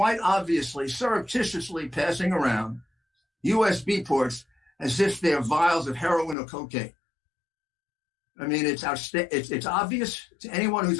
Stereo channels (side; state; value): right; drops out; at 6.4 s